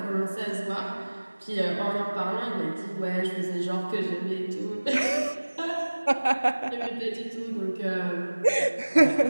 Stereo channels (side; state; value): both; inverted; correlation -1.00